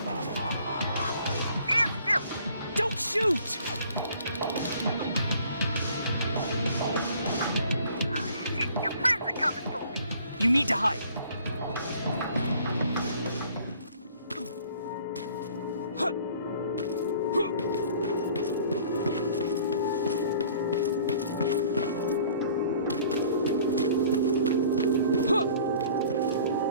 Stand still! Don't shoot! Ah, shit, your friends are coming for me! You need to hide.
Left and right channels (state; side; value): inverted; both; correlation -0.53